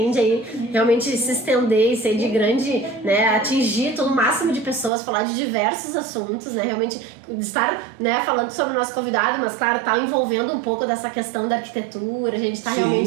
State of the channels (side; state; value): left; drops out; at 4.9 s